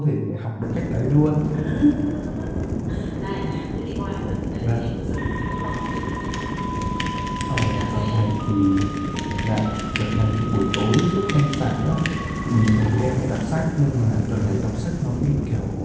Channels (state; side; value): identical; both; correlation 1.00